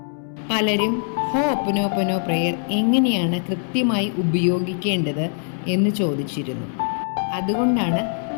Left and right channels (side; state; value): right; silent; 64 dB below the other